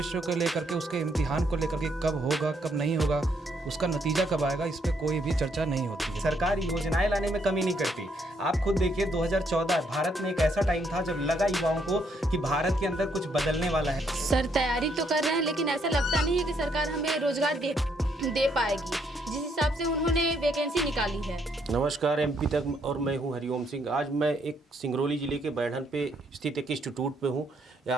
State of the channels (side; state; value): both; normal; correlation 0.72